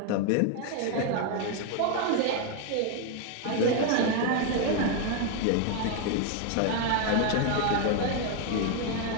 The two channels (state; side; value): different; both; correlation 0.01